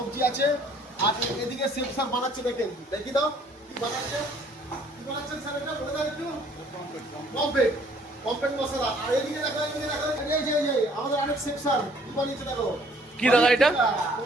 আছে। আর এদিকে শেফ স্যার বানাচ্ছে, দেখেন দেখি দাও কি বানাচ্ছে। কি বানাচ্ছেন স্যার, এটা বলে দাও একটু। পমফ্রেট, পমফ্রেট মশলা। আর এদিকে দেখো, এদিকে দেখো, এই যে আমাদের আরেক শেফ স্যার কি বানিয়েছে দেখো। কি দাদা এটা?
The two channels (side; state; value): both; normal; correlation 0.59